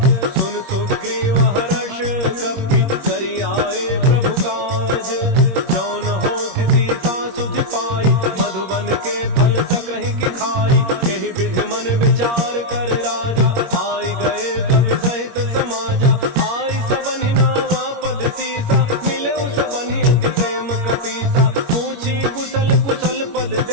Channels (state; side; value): late; left; 21 ms